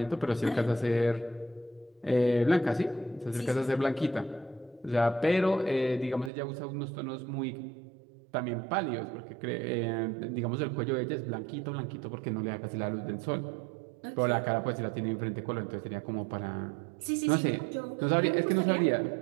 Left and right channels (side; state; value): left; drops out; at 6.3 s